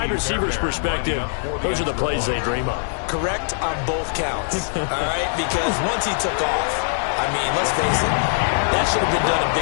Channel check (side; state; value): right; silent; 64 dB below the other